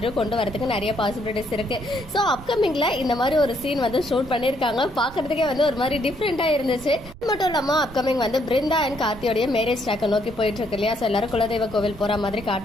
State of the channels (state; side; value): noise; right; rumble, 17 dB below the sound